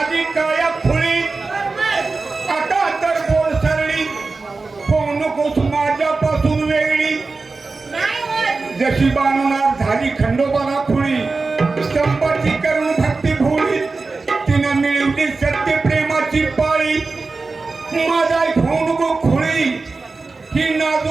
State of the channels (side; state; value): left; quieter; 3.9 dB